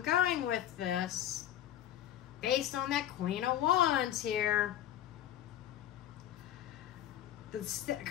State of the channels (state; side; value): quieter; right; 11.8 dB